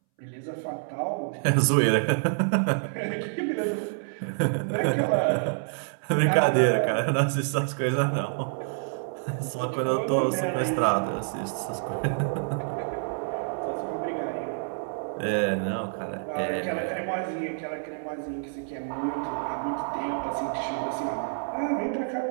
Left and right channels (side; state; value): left; silent; 60 dB below the other